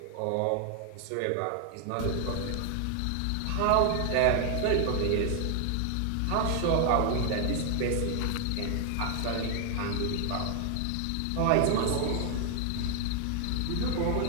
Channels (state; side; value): different; both; correlation 0.00